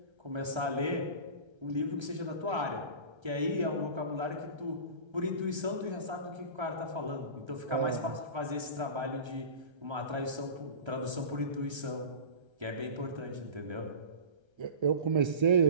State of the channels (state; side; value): late; left; 1.3 ms